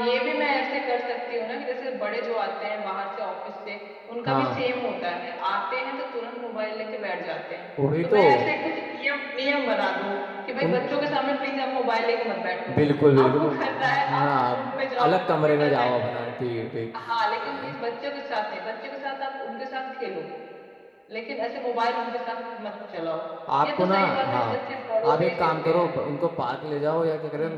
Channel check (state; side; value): identical; both; correlation 1.00